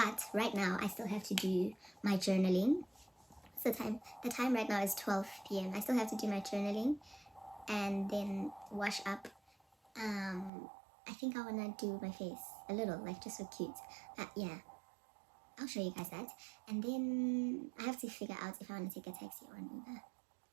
right now I still have to do my journaling. What's the time? The time right now is 12 p.m. I still have to do my journaling and then wash up. I think I wanna do my face a little, like, just so cute. Yeah, I'll show you guys that. And then I have to figure out if I want to take a taxi or an Uber.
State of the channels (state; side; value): drops out; left; at 10.5 s